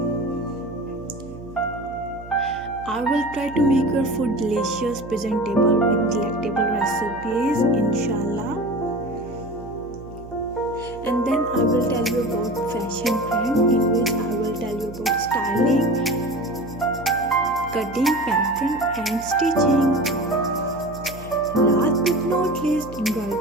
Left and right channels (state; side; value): noise; right; hum, 16 dB below the sound